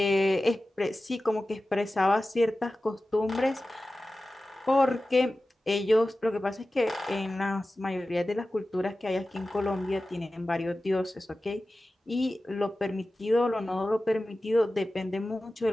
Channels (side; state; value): both; normal; correlation 0.95